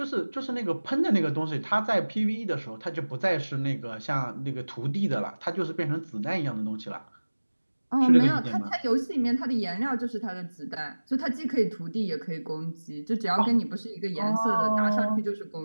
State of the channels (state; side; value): inverted; both; correlation -1.00